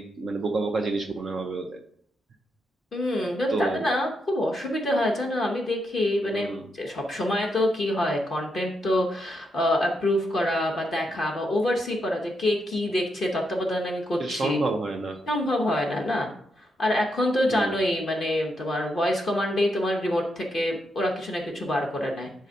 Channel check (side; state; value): both; normal; correlation 0.81